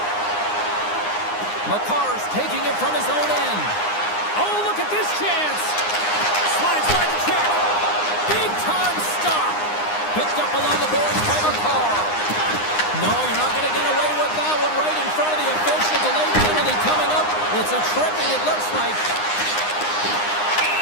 McCarr's taking it from his own end. Oh, look at this chance. Slides by the check. Big time stop. Picked up along the boards by McCarr. No, you're not going to get away with that one right in front of the official. Delayed penalty coming up. It's a tripping, it looks like.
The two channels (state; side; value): late; right; 9.7 ms